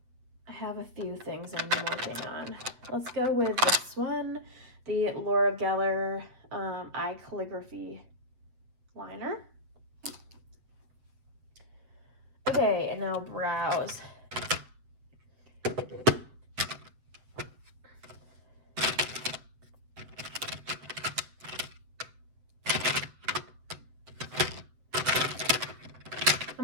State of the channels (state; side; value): late; left; 7.9 ms